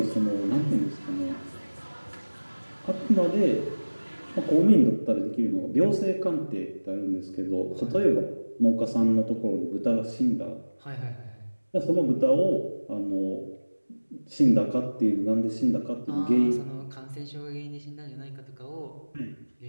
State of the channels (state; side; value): inverted; both; correlation -1.00